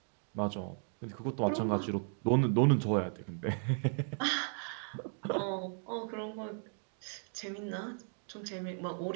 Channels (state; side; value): silent; left; 54 dB below the other